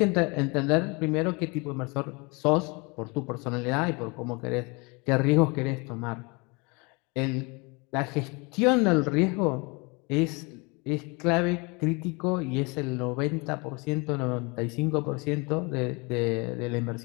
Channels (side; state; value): right; quieter; 28.9 dB